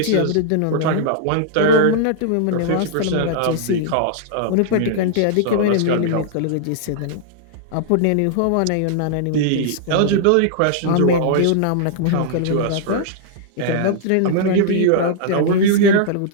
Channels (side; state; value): both; different; correlation -0.01